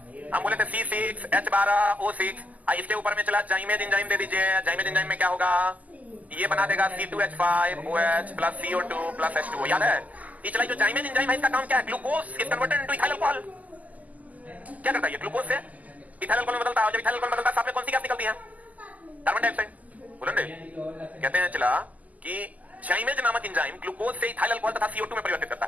हम बोले थे C6H12O6. इसके ऊपर में चला जाइमेज एंजाइम दे दीजिए. जाइमेज एंजाइम में क्या होगा? ये बना देगा C2H5OH plus CO2 plus H2O. याद है? ये चला जो जाइमेज एंजाइम है, इसका काम क्या है? Glucose is converted into ethyl alcohol. क्या करता है ये? ग्लूकोज से इथाइल अल्कोहल में बदलता है. जब इथाइल अल्कोहल में बदलता है, साथ में कौन सी गैस निकलती है? Carbon dioxide. बोलो ना. कहते हैं चला कि जाइमेज नामक एंजाइम ग्लूकोज से इथाइल अल्कोहल तथा CO2 में परिवर्तित करता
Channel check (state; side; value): late; left; 0.077 ms